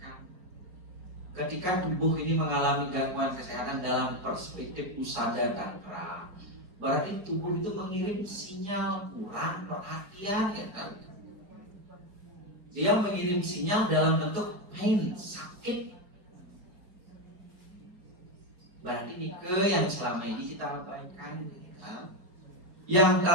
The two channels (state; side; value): late; left; 5.0 ms